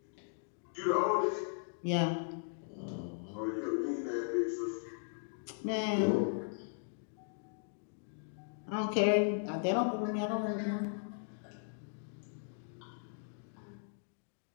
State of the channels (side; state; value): right; silent; digital silence